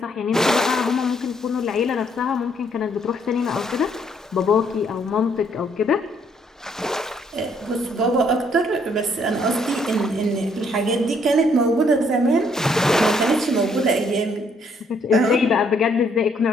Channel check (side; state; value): both; normal; correlation 0.68